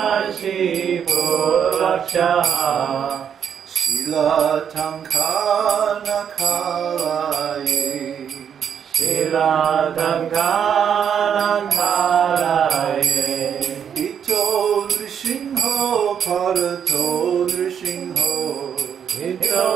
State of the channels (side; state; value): left; quieter; 8.1 dB